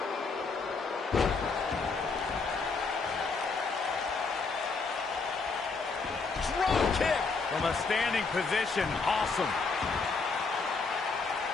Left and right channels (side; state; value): right; quieter; 4.4 dB